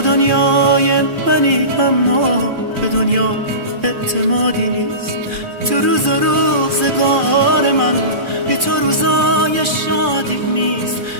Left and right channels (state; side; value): late; left; 2.4 ms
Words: دنیای منی اما به دنیا اعتمادی نیست. تو روز و روزگار من بی تو روزای شادی نیست.